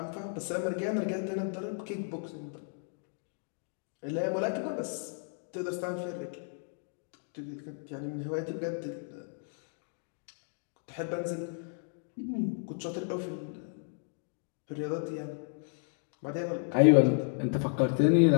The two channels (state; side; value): silent; right; digital silence